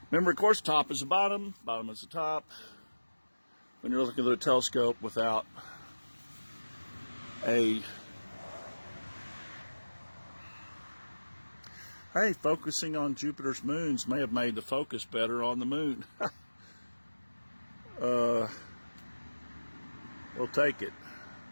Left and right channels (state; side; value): inverted; both; correlation -1.00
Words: remember, of course, top is the bottom, bottom is the top. When you're looking at a telescope without a, hey, focusing on Jupiter's moons may have made the focus better on the moon. We'll take it.